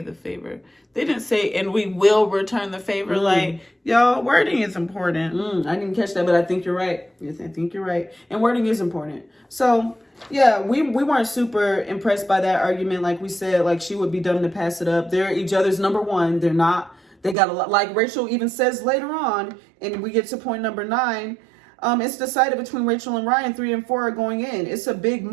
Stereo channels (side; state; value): left; drops out; at 17.4 s